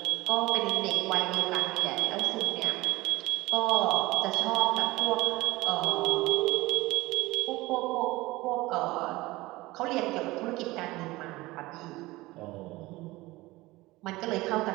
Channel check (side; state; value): left; quieter; 20.1 dB